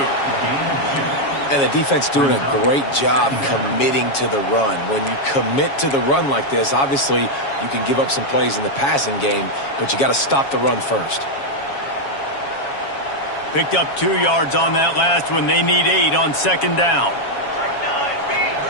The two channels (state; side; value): late; right; 7.2 ms